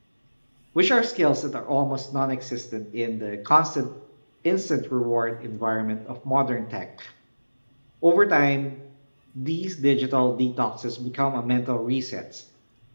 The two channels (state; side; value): inverted; both; correlation -1.00